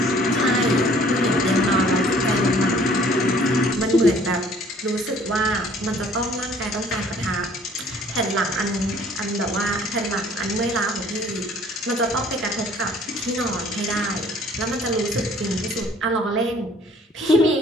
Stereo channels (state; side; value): normal; both; correlation 0.56